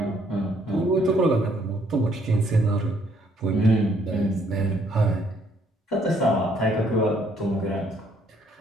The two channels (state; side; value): normal; both; correlation 0.66